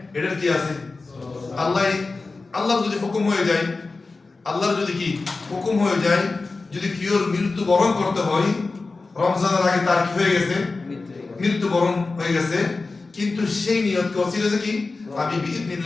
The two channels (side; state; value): right; quieter; 3.8 dB